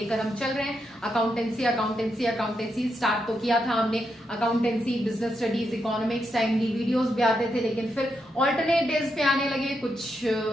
हम चल रहे हैं, अकाउंटेंसी स्टार्ट तो किया था हमने, accountancy, business studies, economics, timely videos भी आते थे, लेकिन फिर ऑल्टरनेट डेज पे आने लगे, कुछ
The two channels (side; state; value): both; normal; correlation 0.82